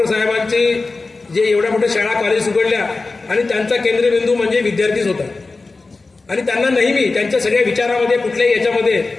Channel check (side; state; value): right; quieter; 3.7 dB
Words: साहेबांची जे एवढ्या मोठ्या शाळा कॉलेज उघडल्या आणि त्यांचा केंद्रबिंदू म्हणजे विद्यार्थीच होता. आणि त्यांना नेहमी त्यांच्या सगळ्या विचारामध्ये कुठल्याही याच्यामध्ये